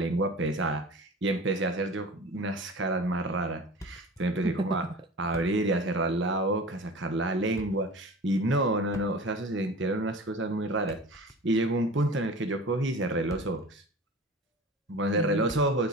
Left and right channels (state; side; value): normal; both; correlation 0.37